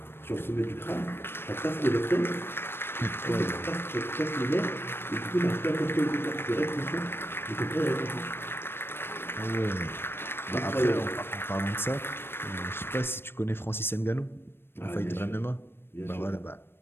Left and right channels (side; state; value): right; late; 0.11 ms